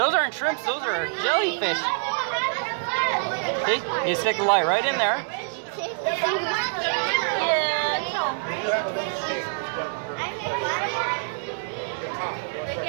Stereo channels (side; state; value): left; silent; digital silence